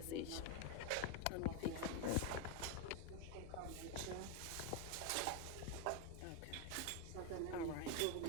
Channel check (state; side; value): different; both; correlation 0.01